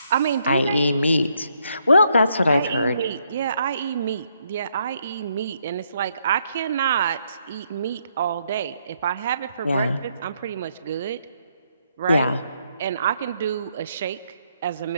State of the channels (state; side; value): inverted; both; correlation -0.74